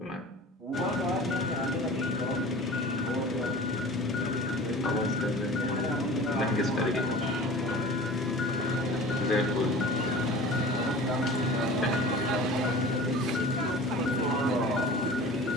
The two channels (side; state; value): both; normal; correlation 0.40